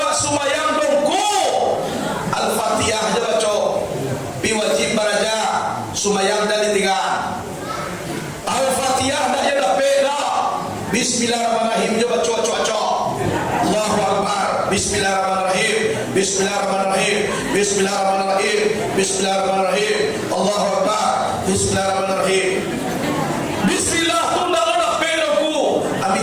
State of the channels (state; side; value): identical; both; correlation 1.00